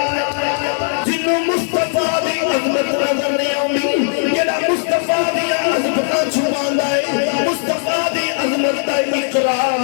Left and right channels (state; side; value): silent; right; 68 dB below the other